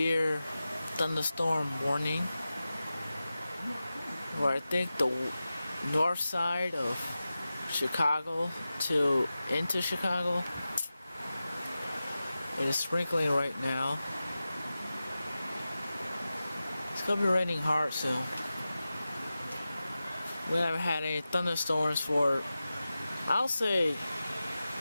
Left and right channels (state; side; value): inverted; both; correlation -0.94